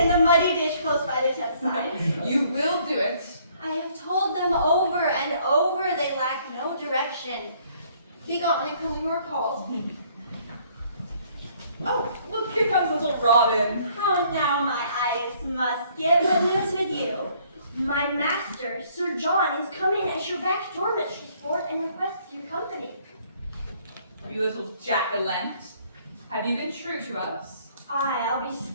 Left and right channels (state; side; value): inverted; both; correlation -0.63